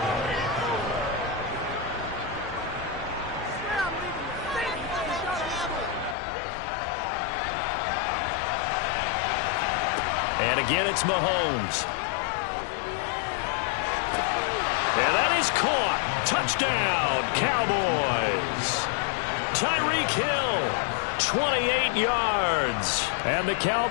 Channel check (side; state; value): right; drops out; at 6.2 s